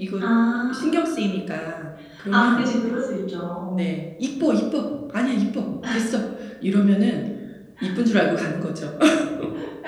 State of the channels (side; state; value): both; identical; correlation 1.00